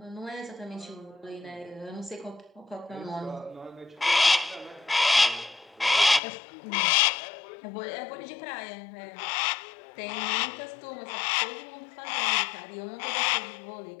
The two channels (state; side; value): drops out; right; at 6.2 s